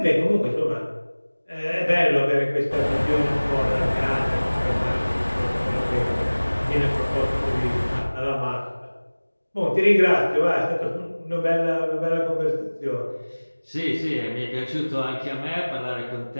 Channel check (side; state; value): both; inverted; correlation -1.00